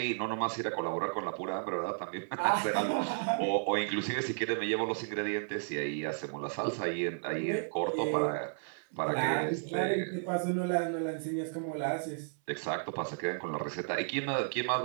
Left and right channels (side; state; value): left; silent; 56 dB below the other